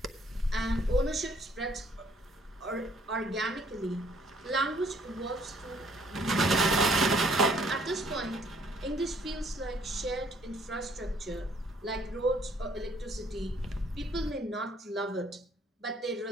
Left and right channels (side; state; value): both; normal; correlation 0.62